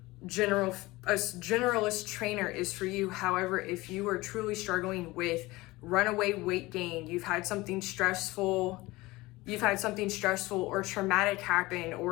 a generalist trainer is for you. However, if you are truly struggling with runaway weight gain, you've had something stressful or traumatic happen,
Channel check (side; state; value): right; quieter; 20.4 dB